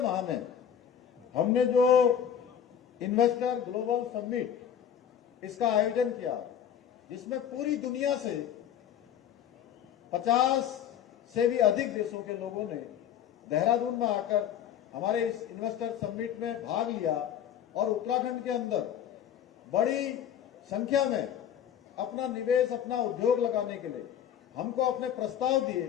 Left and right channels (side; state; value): right; quieter; 9.3 dB